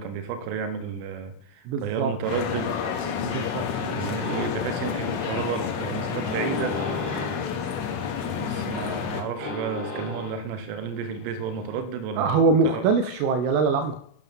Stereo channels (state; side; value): late; left; 33 ms